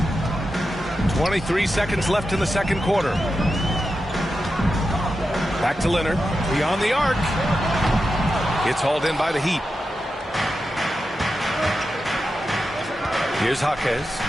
23 seconds left in the second quarter. Back to Leonard. Beyond the arc. It's hauled in by the Heat. Here's Jaquez.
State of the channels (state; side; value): normal; both; correlation 0.90